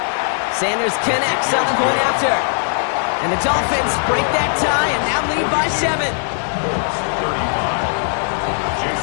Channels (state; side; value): silent; right; digital silence